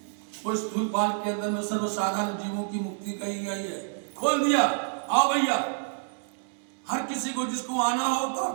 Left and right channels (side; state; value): left; silent; 59 dB below the other